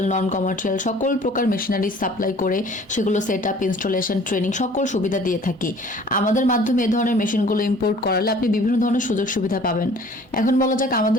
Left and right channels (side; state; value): both; normal; correlation 0.51